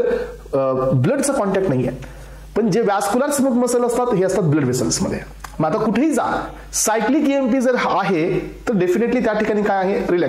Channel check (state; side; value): identical; both; correlation 1.00